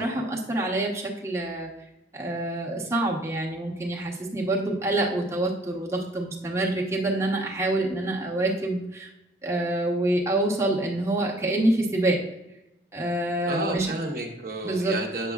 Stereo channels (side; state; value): both; normal; correlation 0.56